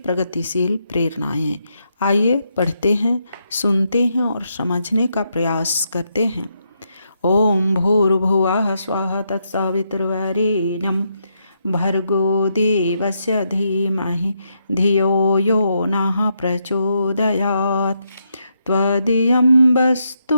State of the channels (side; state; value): both; inverted; correlation -0.80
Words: प्रेरणाएं। आइए पढ़ते हैं, सुनते हैं और समझने का प्रयास करते हैं। ओम भूर्भुवः स्वः तत्सवितुर्वरेण्यं भर्गो देवस्य धीमहि धियो यो नः प्रचोदयात्। त्वदीयं वस्तु